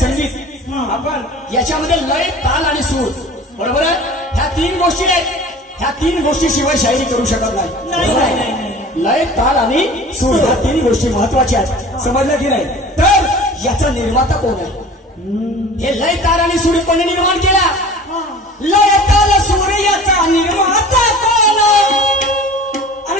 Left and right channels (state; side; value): normal; both; correlation 0.41